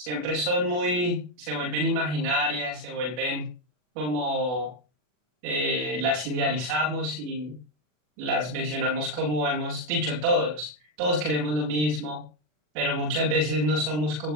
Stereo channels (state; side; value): late; left; 40 ms